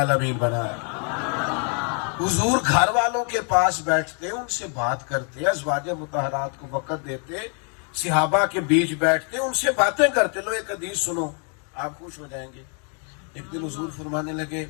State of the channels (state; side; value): quieter; right; 39.8 dB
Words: بنایا. حضور گھر والوں کے پاس بیٹھتے, ان سے بات کرتے, ازواج مطہرات کو وقت دیتے, صحابہ کے بیچ بیٹھتے, ان سے باتیں کرتے. لو ایک حدیث سنو آپ خوش ہو جائیں گے. ایک دن حضور فرمانے لگے,